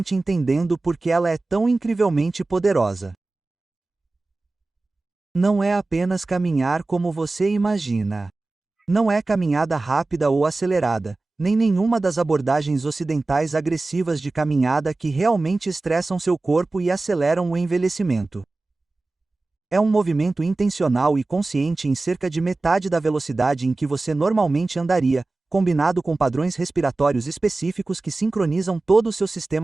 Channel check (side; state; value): left; quieter; 3.3 dB